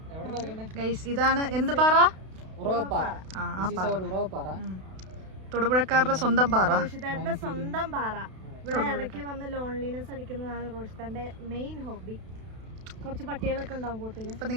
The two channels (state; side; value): late; left; 32 ms